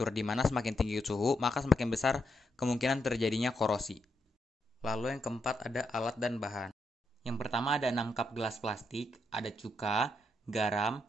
di mana semakin tinggi suhu, maka semakin besar kemungkinan terjadinya korosi. Lalu yang keempat ada alat dan bahan. Yang pertama ada 6 cup gelas plastik, ada cuka, garam,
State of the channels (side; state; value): both; normal; correlation 0.80